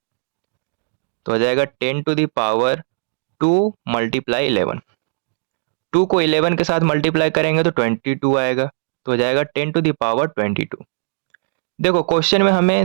तो हो जाएगा 10⁻2 मल्टीप्लाई 11। 2 को 11 के साथ मल्टीप्लाई करेंगे तो 22 आएगा, तो हो जाएगा 10⁻22। देखो, क्वेश्चन में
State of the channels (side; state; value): left; silent; digital silence